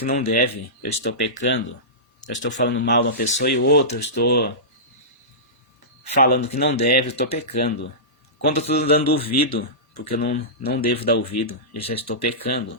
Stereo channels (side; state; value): both; normal; correlation -0.19